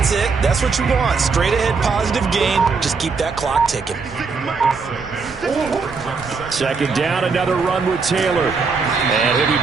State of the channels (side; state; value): left; quieter; 4.8 dB